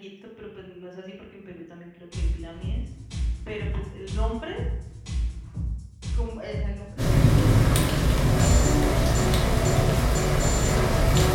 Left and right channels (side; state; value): both; identical; correlation 1.00